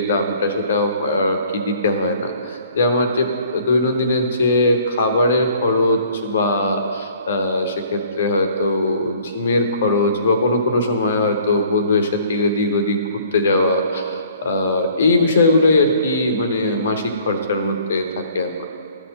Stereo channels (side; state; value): both; inverted; correlation -0.56